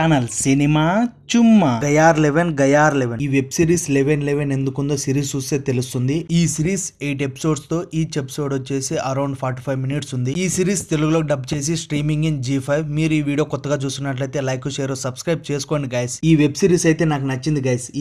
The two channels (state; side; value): identical; both; correlation 1.00